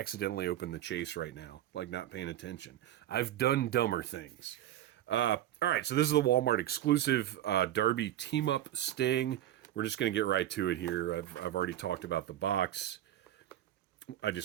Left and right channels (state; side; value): quieter; left; 12.8 dB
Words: open the chase right now, like not paying attention? I've done dumber things. All right, so this is the Walmart exclusive Darby team-up Sting. We're just going to get right to it here. I've already talked about the box. I